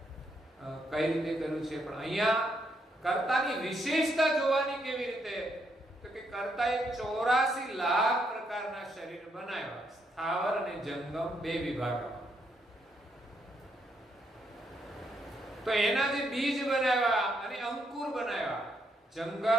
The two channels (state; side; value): normal; both; correlation 0.76